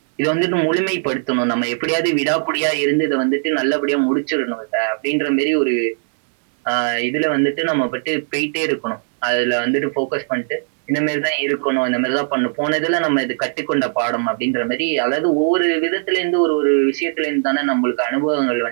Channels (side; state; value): left; silent; digital silence